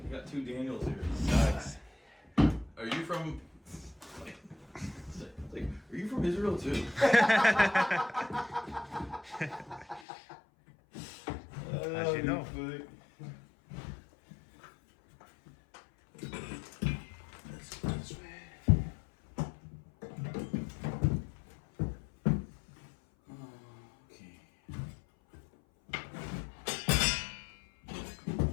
You got two Daniels here. Nice. Are you from? Are you from Israel too? As you know. Let's go this way. Okay.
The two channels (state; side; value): drops out; right; at 10.0 s